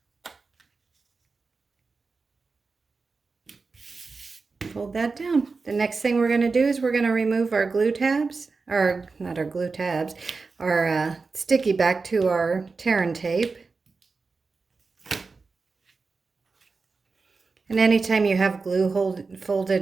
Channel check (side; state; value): left; quieter; 4.3 dB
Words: Fold that down. The next thing we're going to do is we're going to remove our glue tabs, or not our glue tabs, our sticky back to our tear and tape. And anytime you have glue